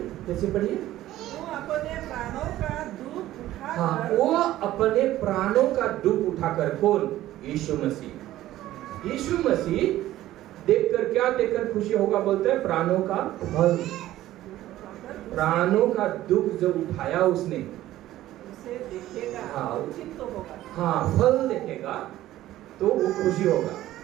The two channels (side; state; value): left; quieter; 14.5 dB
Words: फिर से पढ़िए। वो अपने प्राणों का दुख उठाकर, हाँ, वो अपने प्राणों का दुख उठाकर, कौन? यीशु मसीह। यीशु मसीह देखकर, क्या देखकर खुशी होगा? बोलते हैं प्राणों का फल। प्राणों का दुख जो उठाया उसने, उसे देखेगा, हाँ, उचित तो होगा। हाँ, फल देखेगा तो वो खुशी होगा।